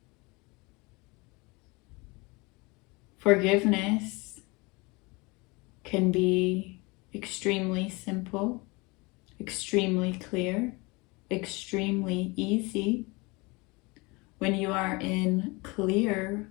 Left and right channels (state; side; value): quieter; right; 26.0 dB